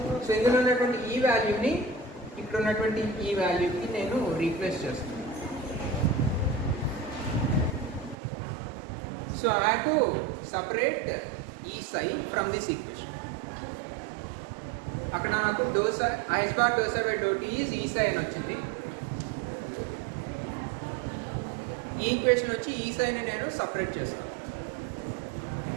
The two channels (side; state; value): left; drops out; at 8.2 s